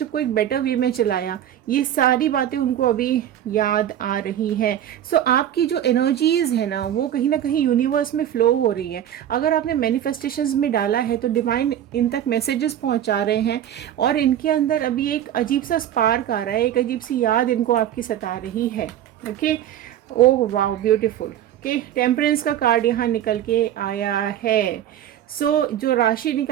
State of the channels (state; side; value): quieter; left; 11.0 dB